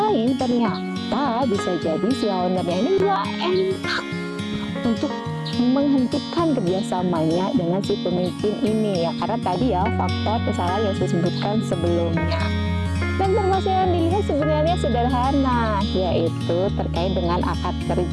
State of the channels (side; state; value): both; identical; correlation 1.00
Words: ternyata bisa jadi si ownernya ini nggak enak untuk menghentikan kerjasamanya dengan si pemimpin ini ya, karena tadi ya faktor kesalahan yang saya sebutkan sebelumnya. Dan permasalahan dilihat sebenarnya sederhana, yaitu terkait dengan akad